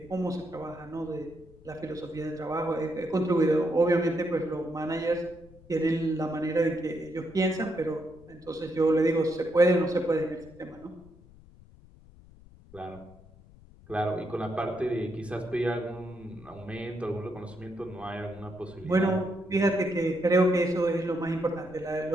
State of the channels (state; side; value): noise; left; rumble, 23 dB below the sound